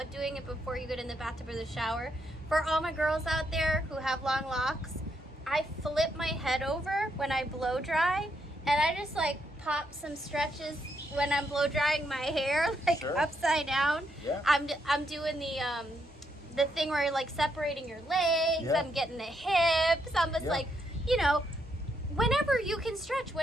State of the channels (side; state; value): both; normal; correlation 0.77